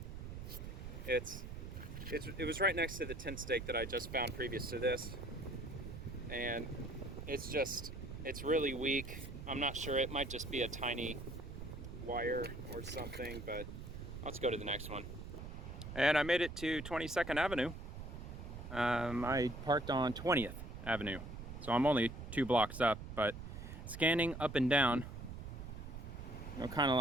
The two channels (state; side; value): noise; right; rumble, 9 dB below the sound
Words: it was right next to the tent stake that I just found previous to this. And it's really weak. I'm not sure, it might just be a tiny wire or something, but let's go to the next one. And I made it to 22nd Avenue. I parked on 20th Avenue, so I'm only 2 blocks up, but scanning up and down, you know, kind of